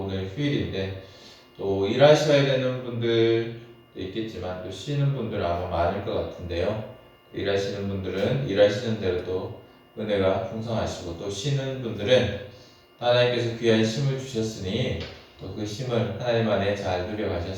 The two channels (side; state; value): both; identical; correlation 1.00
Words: 오늘 휴일인데 또 일하셔야 되는 분들도 있겠지만 또 쉬는 분들 아마 많을 것 같은데요. 일하시는 분들은 일하시는 대로 또 은혜가 풍성하시고, 또 쉬는 분들은 하나님께서 귀한 쉼을 주셨으니 또 그 쉼을 하나님 안에 잘